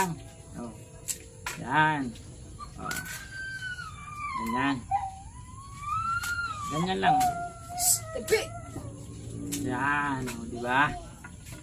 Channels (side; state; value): both; identical; correlation 1.00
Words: Oh. Ayan. Oh. Ganyan. Ganyan lang. Yan, oh, di ba?